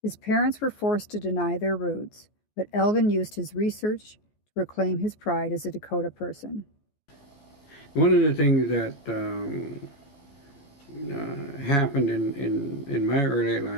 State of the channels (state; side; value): late; right; 14 ms